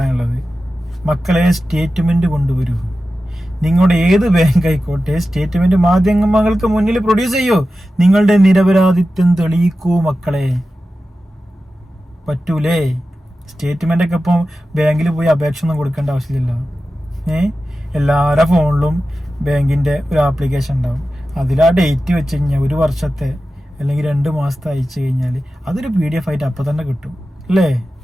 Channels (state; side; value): normal; both; correlation 0.93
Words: മക്കളെ സ്റ്റേറ്റ്മെന്റ് കൊണ്ടുവരൂ. നിങ്ങളുടെ ഏത് ബാങ്ക് ആയിക്കോട്ടെ, സ്റ്റേറ്റ്മെന്റ് മാധ്യമങ്ങൾക്ക് മുന്നിൽ പ്രൊഡ്യൂസ് ചെയ്യൂ. നിങ്ങളുടെ നിരപരാധിത്വം തെളിയിക്കൂ മക്കളെ. പറ്റൂലേ? സ്റ്റേറ്റ്മെന്റ് ഒക്കെ ഇപ്പം ബാങ്കിൽ പോയി അപേക്ഷ ഒന്നും കൊടുക്കേണ്ട ആവശ്യമില്ലല്ലോ. എല്ലാവരുടെ ഫോണിലും ബാങ്കിന്റെ ഒരു ആപ്ലിക്കേഷൻ ഉണ്ടാവും. അതിൽ ആ ഡേറ്റ് വെച്ച് കഴിഞ്ഞാൽ 1 വർഷത്തെ അല്ലെങ്കിൽ 2 മാസത്തെ അയച്ചു കഴിഞ്ഞാൽ അതൊരു PDF ആയിട്ട് അപ്പം തന്നെ കിട്ടും അല്ലേ?